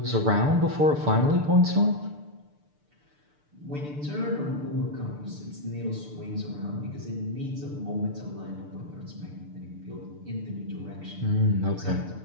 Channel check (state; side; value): late; left; 6.8 ms